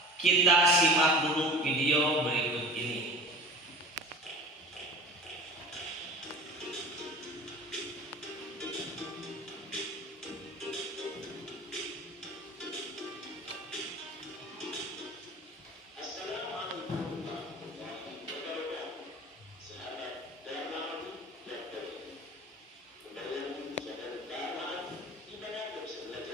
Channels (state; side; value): normal; both; correlation 0.38